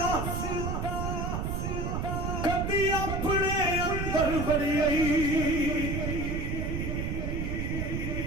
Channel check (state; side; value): noise; right; rumble, 1 dB below the sound